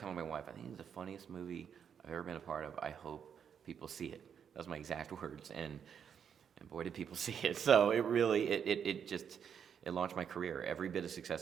my wife, I think it's the funniest movie I've ever been a part of. I hope people see it. That was my exact words, and boy, did people see it. So it really, it just, it launched my career. Every bit of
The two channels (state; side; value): quieter; left; 7.8 dB